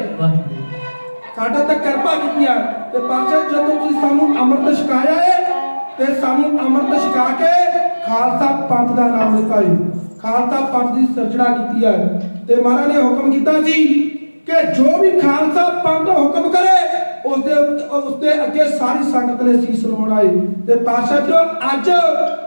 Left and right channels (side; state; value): both; inverted; correlation -1.00